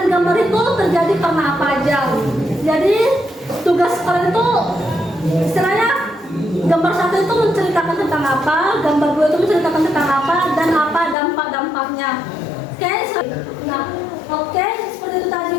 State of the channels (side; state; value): right; drops out; at 11.2 s